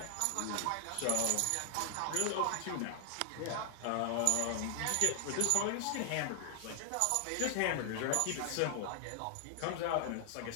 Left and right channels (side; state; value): both; different; correlation 0.00